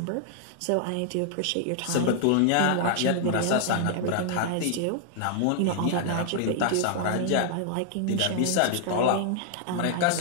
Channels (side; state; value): both; different; correlation -0.01